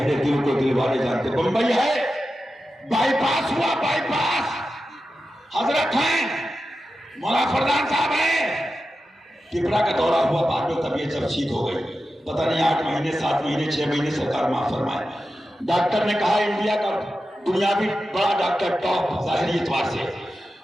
دل کو دل والے جانتے۔ بمبئی ہے، بائی پاس ہوا، بائی پاس، حضرت ہیں، مولا فردان صاحب ہیں، ٹپرا کا دورہ ہوا، بعد میں طبیعت جب ٹھیک ہو گئی، پتہ نہیں 8 مہینے 7 مہینے 6 مہینے سرکار معاف فرمائے۔ ڈاکٹر نے کہا انڈیا کا دنیاوی بڑا ڈاکٹر ٹاپ ظاہری اعتبار سے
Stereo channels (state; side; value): normal; both; correlation 0.91